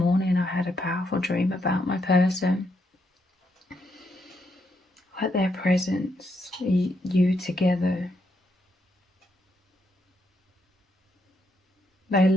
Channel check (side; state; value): both; normal; correlation 0.78